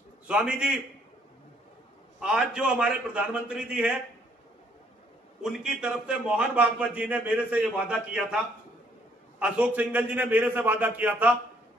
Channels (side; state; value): both; normal; correlation 0.66